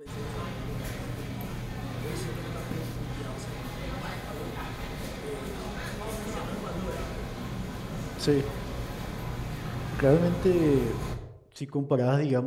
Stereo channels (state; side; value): identical; both; correlation 1.00